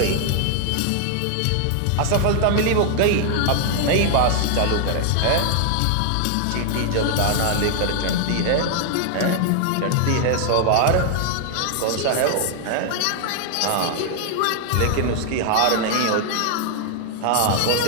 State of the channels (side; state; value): both; different; correlation 0.00